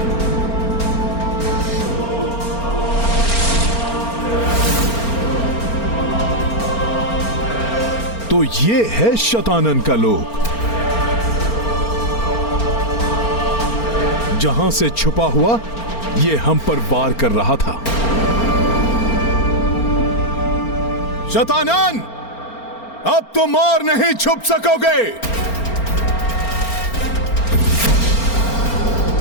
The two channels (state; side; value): late; right; 4.4 ms